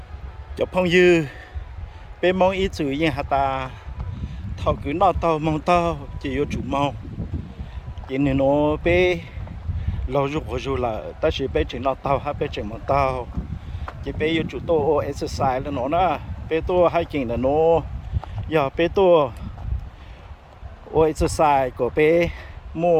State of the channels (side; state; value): both; identical; correlation 1.00